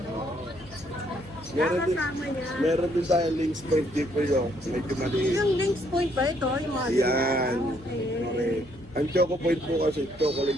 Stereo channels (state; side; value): noise; left; hum, 22 dB below the sound